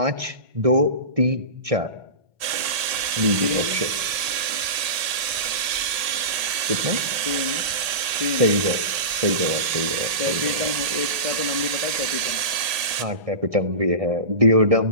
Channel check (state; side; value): late; left; 1.8 ms